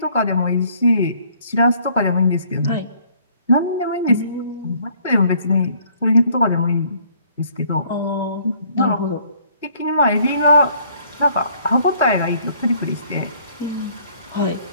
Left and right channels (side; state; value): both; inverted; correlation -0.61